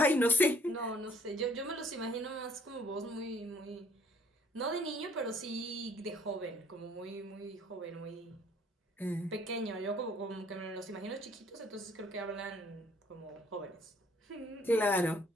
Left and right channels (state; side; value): normal; both; correlation 0.61